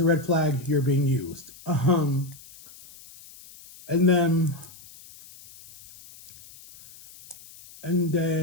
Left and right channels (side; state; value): left; noise; hiss, 21 dB below the sound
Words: red flag. You're being used. And then I'm